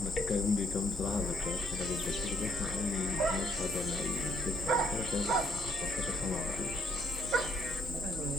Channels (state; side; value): normal; both; correlation 0.70